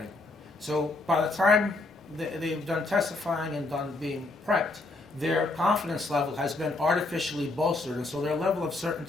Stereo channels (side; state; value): right; quieter; 3.1 dB